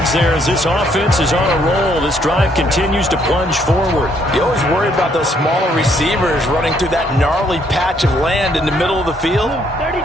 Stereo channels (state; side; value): normal; both; correlation 0.69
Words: there as this offense is on a roll. This drive continues to plunge forward. You always worry about those smaller receivers running through that gnarly patch of land in the middle of the field.